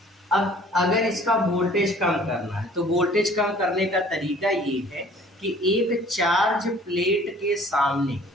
अब अगर इसका वोल्टेज कम करना है तो वोल्टेज कम करने का तरीका ये है कि एक चार्ज प्लेट के सामने,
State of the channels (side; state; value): both; normal; correlation 0.52